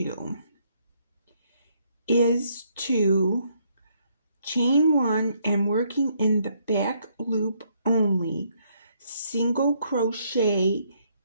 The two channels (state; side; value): inverted; both; correlation -0.71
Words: is to chain 1 and working in the back loop only, single crochet